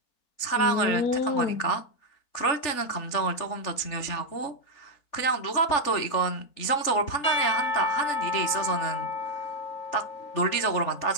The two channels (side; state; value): right; late; 3.4 ms